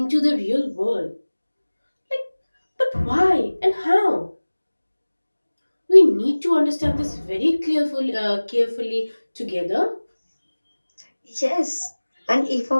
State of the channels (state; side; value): inverted; both; correlation -1.00